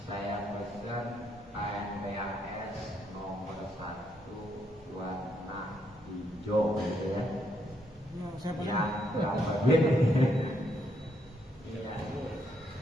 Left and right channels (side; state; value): both; normal; correlation 0.75